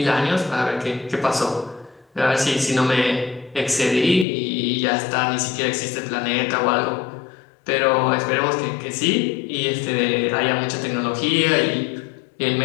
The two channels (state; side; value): drops out; right; at 4.2 s